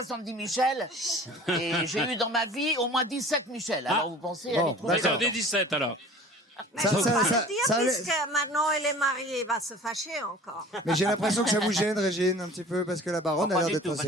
Michel. Et j'ai eu dans ma vie au moins 17 Michel. Alors vous pensez, elle est trop Bah, belle. j'en ai 17 alors. Mais Ça- je ça- peux pas ça- le dire, ça allait- puisque maintenant elle est mariée, il va se fâcher encore. Mais j'ai l'impression que ça vous gêne, Régine, un petit peu, parce que la Baronne Non, a pas l'air du d'être tout, pas assez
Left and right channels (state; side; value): normal; both; correlation 0.44